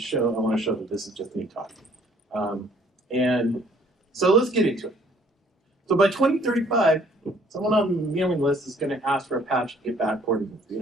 that this is just me talking. And so let's get into it. So by 2035, someone on the mailing list is going to ask for Apache to get backported to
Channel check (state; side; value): normal; both; correlation 0.60